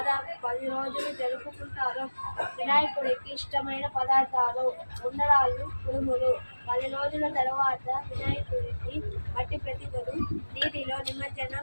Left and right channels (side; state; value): both; inverted; correlation -1.00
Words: 10 రోజులు జరుపుకుంటారు. వినాయకుడికి ఇష్టమైన పదార్థాలు ఉండ్రాళ్ళు, కుడుములు. 10 రోజుల తర్వాత వినాయకుడిని మట్టి ప్రతిమను నీటిలో